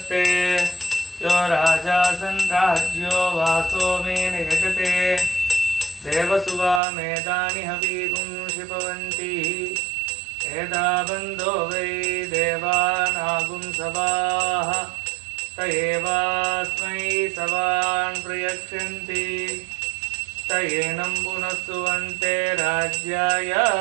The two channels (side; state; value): left; drops out; at 6.8 s